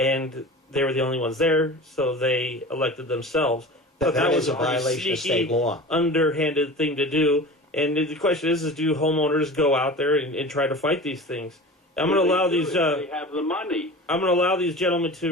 they were the only ones there, so they elected themselves. But that was a violation of state law. Underhanded thing to do. And the question is do homeowners go out there and try to fight these things? I'm going to allow these. They have the money. I'm going to allow these gentlemen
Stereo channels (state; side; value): normal; both; correlation 0.35